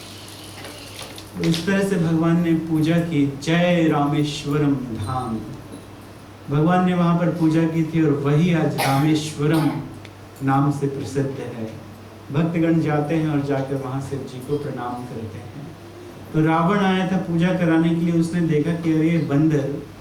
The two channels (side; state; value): both; identical; correlation 1.00